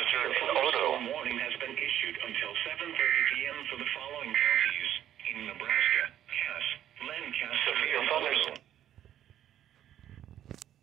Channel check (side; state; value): left; quieter; 11.3 dB